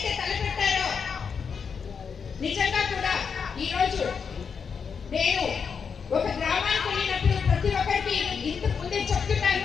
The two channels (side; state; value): right; quieter; 6.2 dB